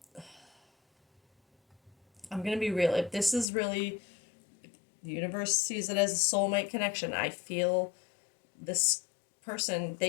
I'm gonna be real, if this is really, the universe sees it as a soulmate connection, I feel this person,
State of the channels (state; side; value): drops out; right; at 3.5 s